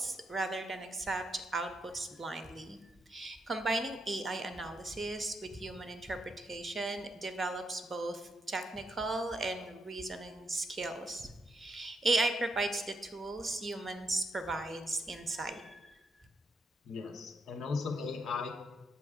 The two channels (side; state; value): both; normal; correlation 0.79